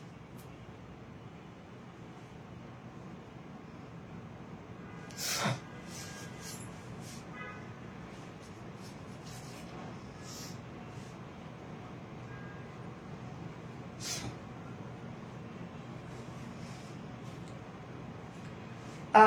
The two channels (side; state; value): both; identical; correlation 1.00